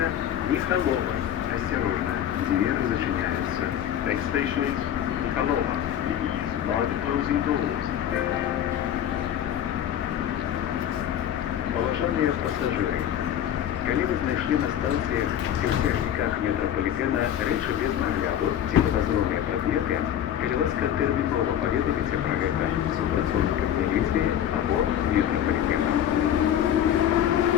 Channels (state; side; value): quieter; right; 10.5 dB